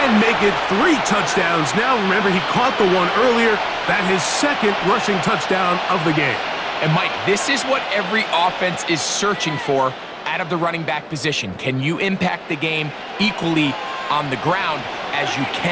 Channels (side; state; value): both; identical; correlation 1.00